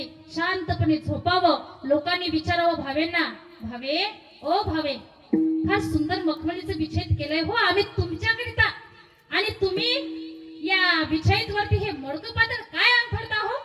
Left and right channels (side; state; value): both; identical; correlation 1.00